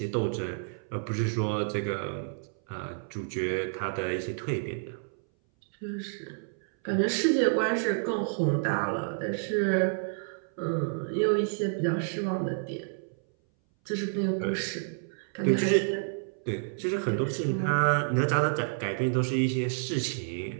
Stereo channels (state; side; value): silent; left; 58 dB below the other